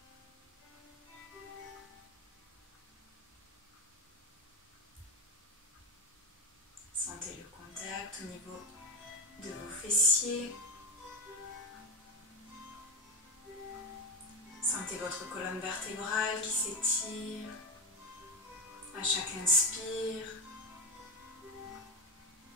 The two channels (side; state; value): both; normal; correlation 0.13